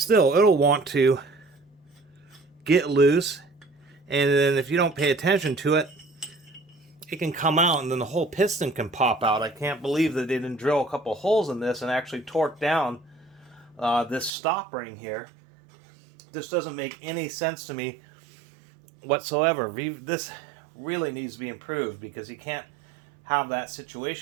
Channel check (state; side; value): drops out; left; at 14.3 s